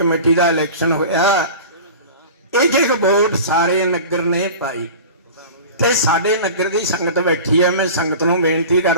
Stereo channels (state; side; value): inverted; both; correlation -0.36